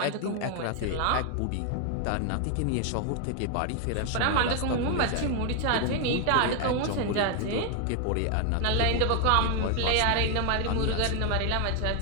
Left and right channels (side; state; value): both; different; correlation 0.00